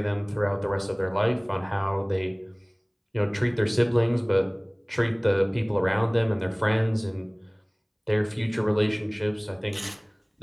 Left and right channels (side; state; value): both; identical; correlation 1.00